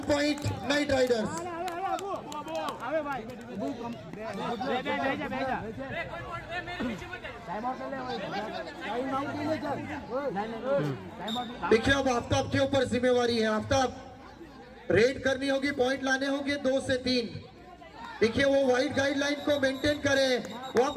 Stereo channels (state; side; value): identical; both; correlation 1.00